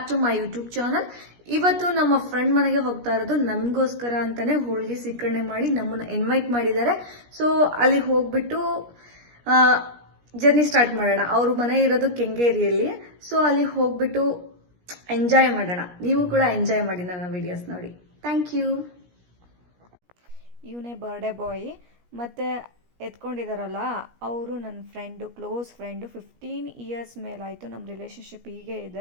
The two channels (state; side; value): late; left; 17 ms